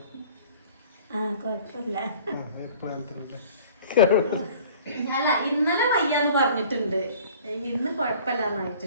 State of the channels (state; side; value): inverted; both; correlation -0.49